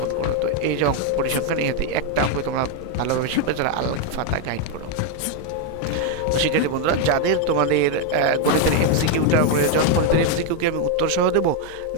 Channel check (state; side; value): different; both; correlation 0.01